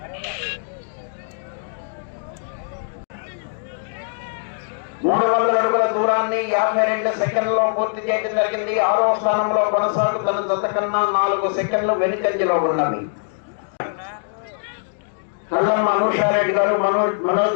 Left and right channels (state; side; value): silent; right; digital silence